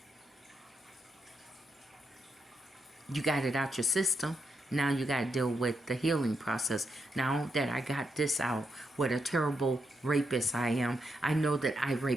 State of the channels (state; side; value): normal; both; correlation 0.82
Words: You got it out your system. Now you got to deal with the healing process. Now that I got this out, what a terrible rapist I am. I know that I